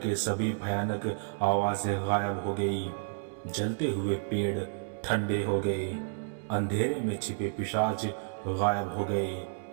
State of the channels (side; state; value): left; silent; digital silence